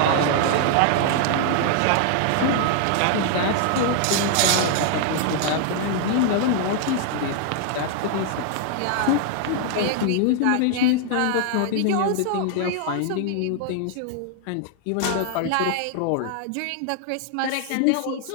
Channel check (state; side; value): different; both; correlation 0.00